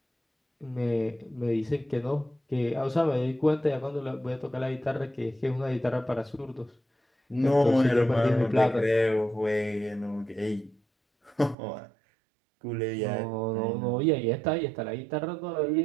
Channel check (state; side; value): drops out; left; at 11.6 s